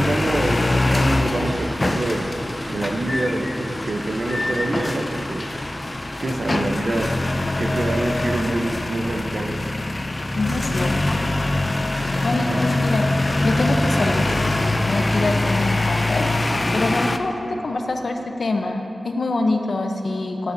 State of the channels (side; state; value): both; normal; correlation 0.96